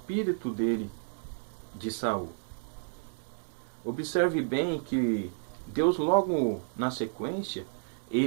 dele de Saul. Observe bem que Deus logo na sequência,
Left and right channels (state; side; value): silent; left; digital silence